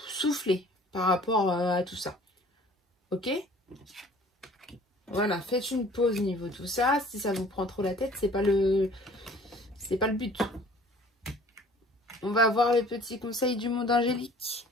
souffler par rapport à tout ça. Ok? Voilà, faites une pause niveau tout ça. Si ça vous prend trop la tête, c'est pas le but. On va voir les petits conseils du monde angélique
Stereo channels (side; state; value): both; normal; correlation 0.51